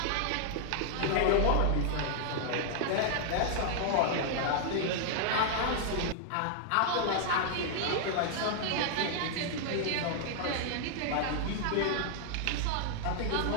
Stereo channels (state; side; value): different; both; correlation -0.01